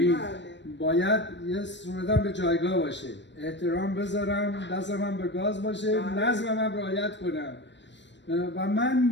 باید یه صورتم به جایگاه باشه، احترام بذارم، دست من به گاز باشه، نظم من رعایت کنم. و من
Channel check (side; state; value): right; late; 0.53 ms